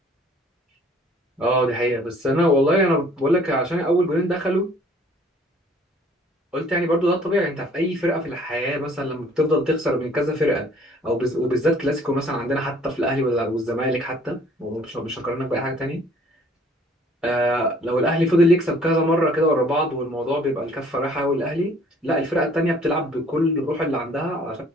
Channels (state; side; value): normal; both; correlation 0.56